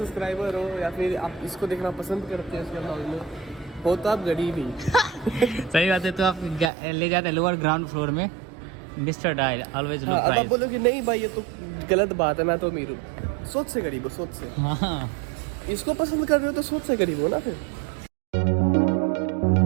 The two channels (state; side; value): drops out; left; at 6.7 s